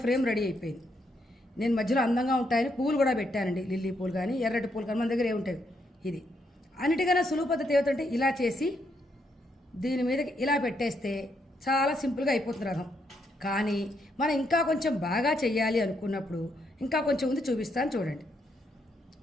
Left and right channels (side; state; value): both; normal; correlation 0.77